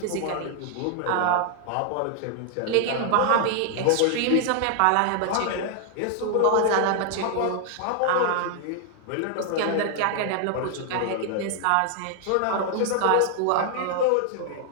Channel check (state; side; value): different; both; correlation 0.00